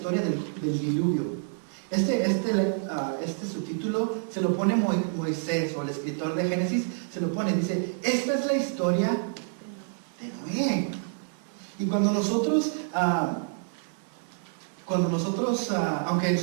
del diluvio. Este subtítulo se lo pone Moisés, o el escritor de Génesis se lo pone, dice, esta es la historia de Noé. Y cuando nosotros, aunque en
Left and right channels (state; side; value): silent; left; 55 dB below the other